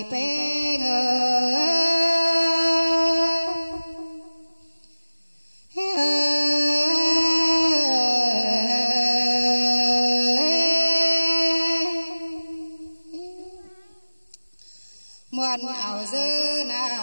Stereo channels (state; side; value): inverted; both; correlation -1.00